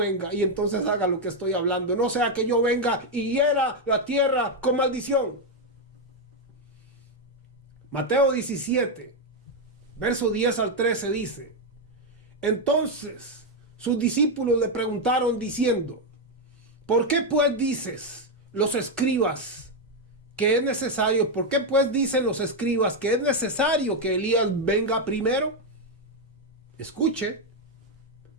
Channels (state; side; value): normal; both; correlation 0.03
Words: y entonces haga lo que estoy hablando. No sea que yo venga y hiera la tierra con maldición. Mateo 17, verso 10 al 13 dice, entonces sus discípulos le preguntaron diciendo, ¿por qué pues dices los escribas que es necesario? ¿Por qué pues dicen los escribas que es necesario que Elías venga primero? Escuche.